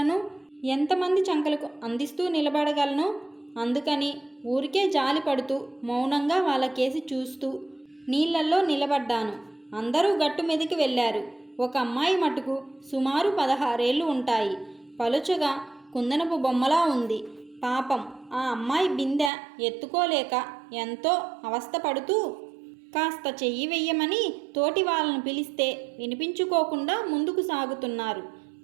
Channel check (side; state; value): left; drops out; at 19.3 s